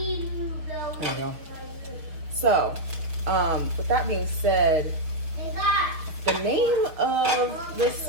you go. So, with that being said, the name of this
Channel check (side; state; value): left; late; 6.3 ms